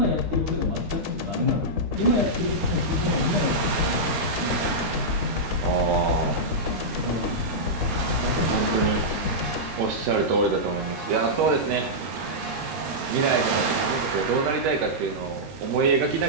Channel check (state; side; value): late; left; 13 ms